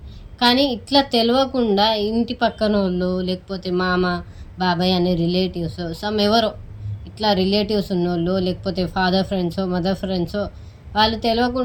కానీ ఇట్లా తెలియకుండా ఇంటి పక్కన వాళ్ళు లేకపోతే మామ బాబాయ్ అనే రిలేటివ్స్ ఎవరో ఇట్లా రిలేటివ్స్ ఉన్నోళ్ళు లేకపోతే ఫాదర్ ఫ్రెండ్సో మదర్ ఫ్రెండ్సో వాళ్ళు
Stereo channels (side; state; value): both; identical; correlation 1.00